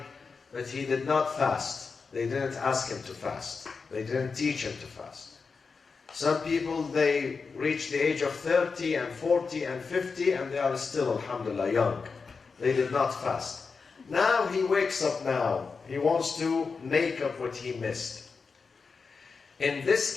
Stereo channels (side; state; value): right; quieter; 4.9 dB